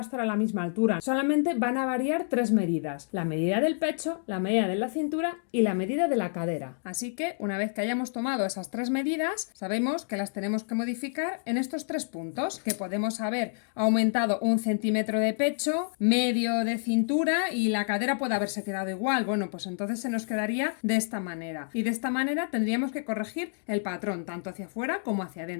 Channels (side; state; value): right; silent; digital silence